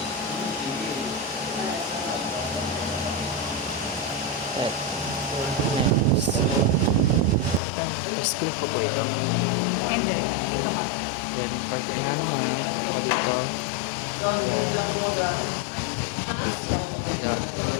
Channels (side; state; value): right; drops out; at 7.6 s